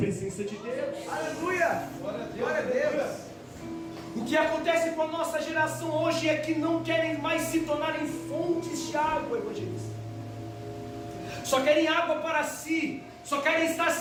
de Deus. Aleluia. Glória a Deus. O que acontece com a nossa geração hoje é que não querem mais se tornar em fontes de água, evangelista. Só querem água para si, só querem estar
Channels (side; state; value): both; identical; correlation 1.00